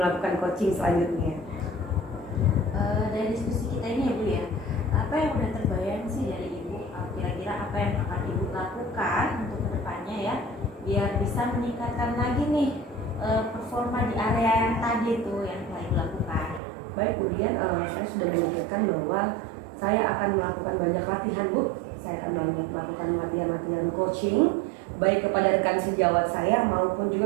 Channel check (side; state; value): left; drops out; at 16.6 s